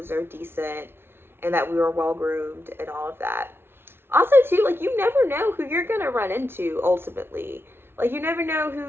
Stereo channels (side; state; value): left; late; 0.11 ms